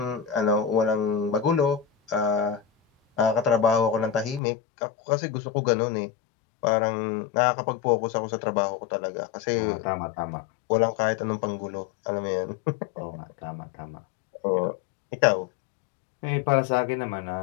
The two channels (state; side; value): drops out; right; at 4.4 s